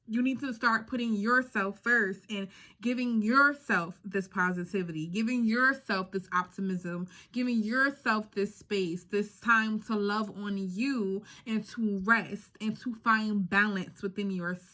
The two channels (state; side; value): identical; both; correlation 1.00